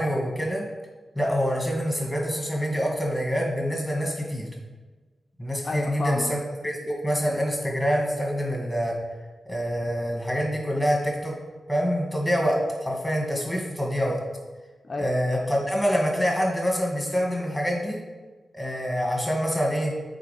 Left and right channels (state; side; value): normal; both; correlation 0.93